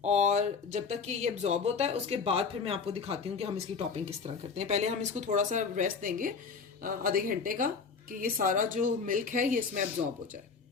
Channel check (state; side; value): quieter; right; 5.3 dB